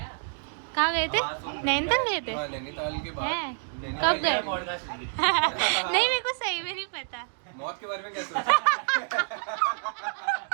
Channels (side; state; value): left; silent; 59 dB below the other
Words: कहाँ गए थे? नैनीताल गए थे? नैनीताल के बाद कब गए? नहीं, मेरे को सही में नहीं पता। मौत के बारे में क्या